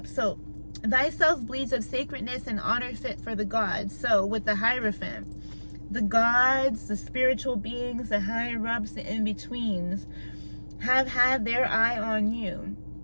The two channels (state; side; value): inverted; both; correlation -1.00